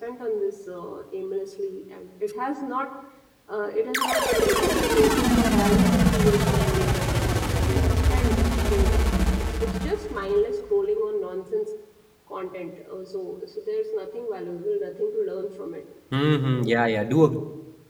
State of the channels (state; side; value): identical; both; correlation 1.00